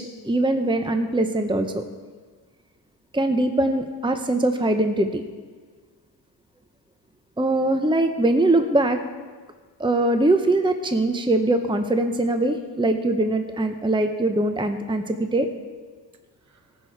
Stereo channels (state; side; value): normal; both; correlation 0.62